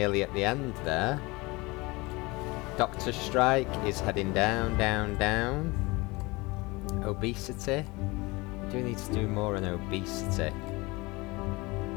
at the end there. Doctor's strike is heading down, down, down. Obesity. We do need to do more on obesity.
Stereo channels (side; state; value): right; quieter; 23.8 dB